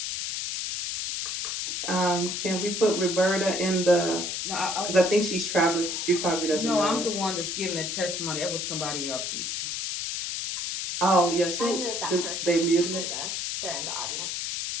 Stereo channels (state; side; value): noise; left; hiss, 3 dB below the sound